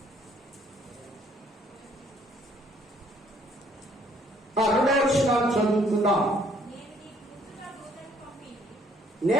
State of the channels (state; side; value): normal; both; correlation 0.63